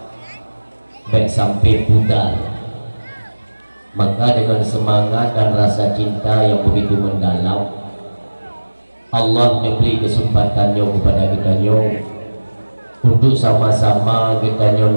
baik sampai pudar, maka dengan semangat dan rasa cinta yang begitu mendalam, Allah memberi kesempatannya kepada kita untuk sama-sama kita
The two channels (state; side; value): inverted; both; correlation -1.00